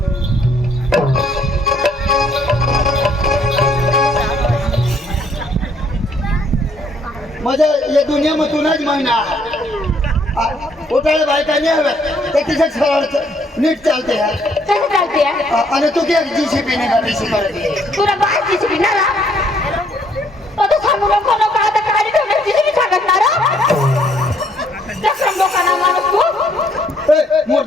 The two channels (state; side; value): normal; both; correlation 0.66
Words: माझ्या या दुनियामधूनच महिना उठाळे बायका नाही हव्या ते तिच्या सरळ नीट चालते आहे कसं चालते आणि तू काय जीसीपी ने गाडी शिकवते तुला बाय जीसीबी ना तो सांगू नको नको आता गाडी ठेवण्यास जीसीबी सांगत ना चक्रम लोकांना माणूस तू